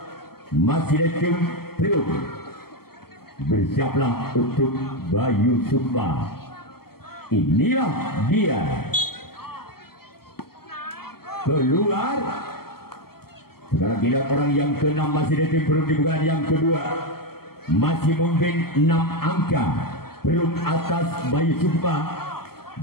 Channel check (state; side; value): late; right; 0.95 ms